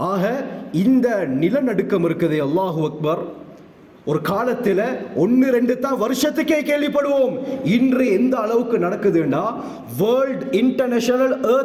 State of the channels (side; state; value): both; identical; correlation 1.00